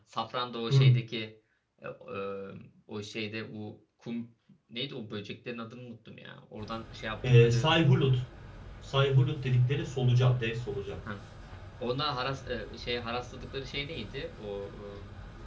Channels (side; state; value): both; identical; correlation 1.00